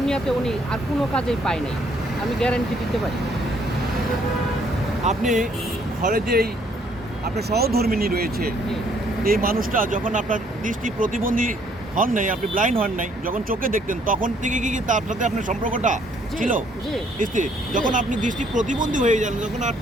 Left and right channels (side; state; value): both; normal; correlation 0.66